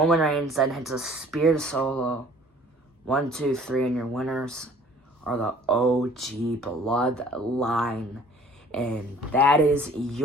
Reigns then hits a spear to Solo. 1, 2, 3, and your winners are the OG Bloodline. And that is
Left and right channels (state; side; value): normal; both; correlation 0.52